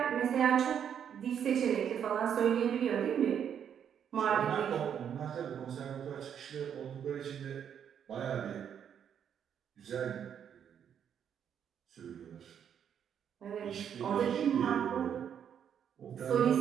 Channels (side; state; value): left; quieter; 8.5 dB